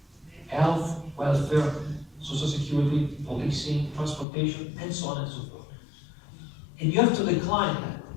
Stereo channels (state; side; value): drops out; right; at 4.2 s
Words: Health, welfare, social security, policing, transportation, and so on and so forth. And you have to decline that.